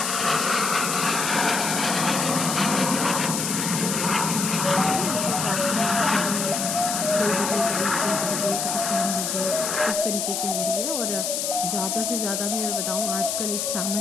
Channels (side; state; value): left; noise; hiss, 1 dB below the sound